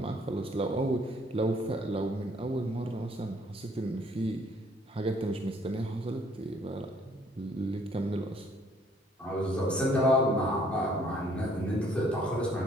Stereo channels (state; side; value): normal; both; correlation 0.62